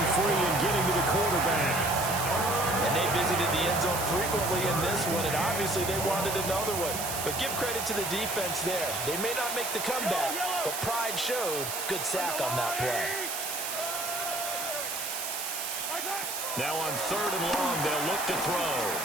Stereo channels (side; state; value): right; noise; hiss, 4 dB below the sound